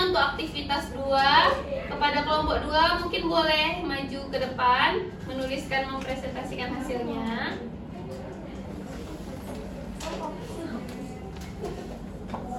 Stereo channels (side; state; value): both; identical; correlation 1.00